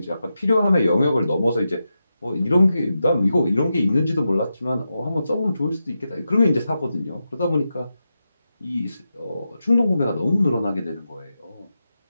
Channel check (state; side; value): inverted; both; correlation -0.88